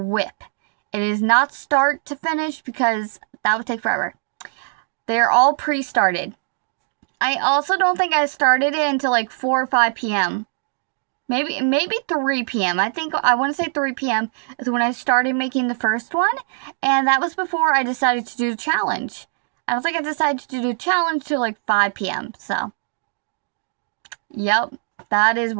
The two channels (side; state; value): left; silent; 65 dB below the other